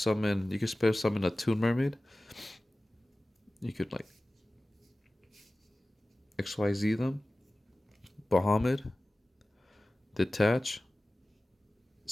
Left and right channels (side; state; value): both; normal; correlation 0.97